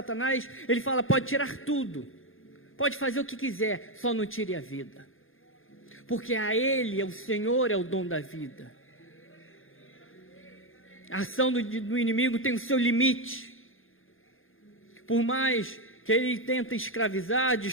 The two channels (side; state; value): right; late; 0.59 ms